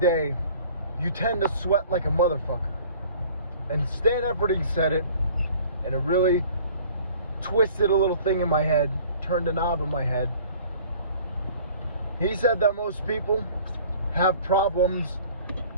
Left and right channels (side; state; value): both; inverted; correlation -0.50